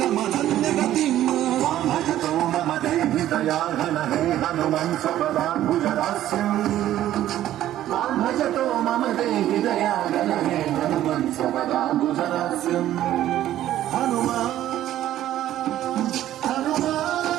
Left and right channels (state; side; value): quieter; left; 12.9 dB